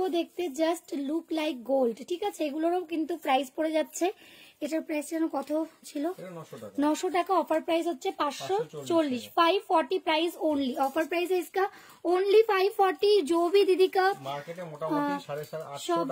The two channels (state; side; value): identical; both; correlation 1.00